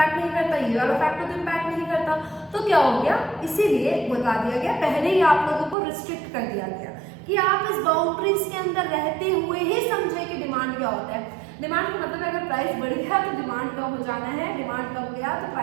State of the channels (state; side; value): drops out; left; at 5.8 s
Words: नहीं करता, ये वाला फैक्टर तो इम्पैक्ट नहीं करता, तो क्या हो गया, इसीलिए बता दिया गया, पहले ही आप लोगों को रिस्ट्रिक्ट कर दिया गया कि आप इस बाउंड्रीज के अंदर रहते हुए ही समझे कि डिमांड क्या होता है। डिमांड का मतलब अगर प्राइस बढ़ गया तो डिमांड कम हो जाना है, डिमांड कम गया तो